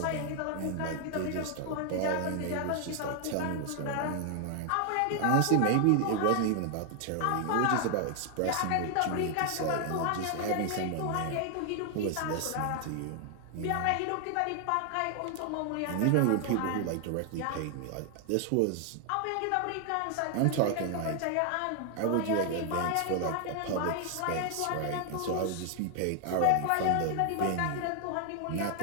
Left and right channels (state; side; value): different; both; correlation 0.00